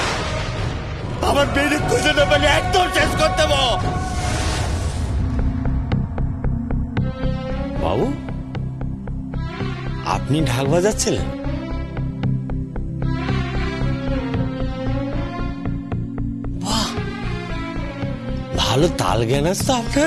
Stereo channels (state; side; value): identical; both; correlation 1.00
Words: আমার মেয়েরে খুঁজে না পেলে একদম শেষ করে দেবো। বাবু, আপনি ঢাক বাজাচ্ছিলেন? বাহ, ভালো তাল জ্ঞান আছে তো